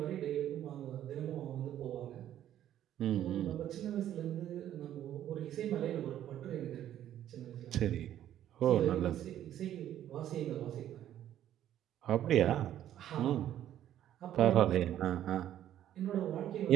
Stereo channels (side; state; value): left; quieter; 11.5 dB